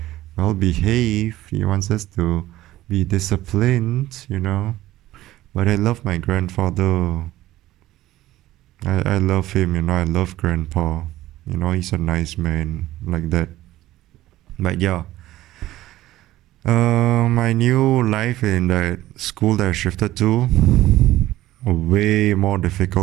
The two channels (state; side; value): quieter; left; 15.5 dB